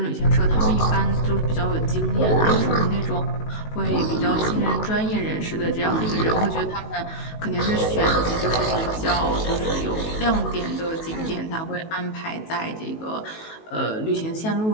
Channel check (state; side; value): late; right; 19 ms